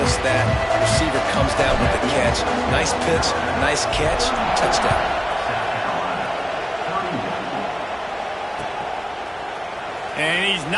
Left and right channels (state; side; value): identical; both; correlation 1.00